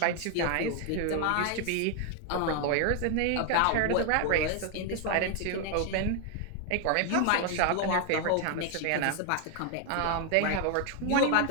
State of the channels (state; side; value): different; both; correlation 0.00